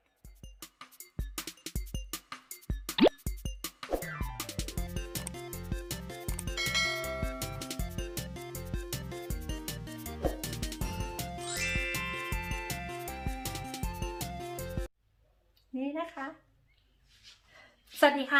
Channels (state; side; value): identical; both; correlation 1.00